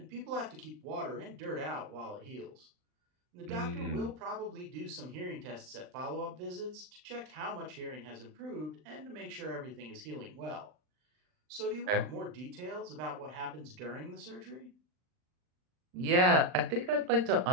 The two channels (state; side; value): late; left; 39 ms